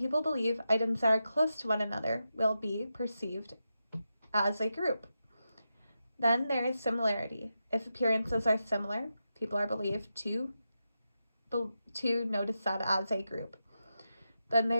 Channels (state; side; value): inverted; both; correlation -0.89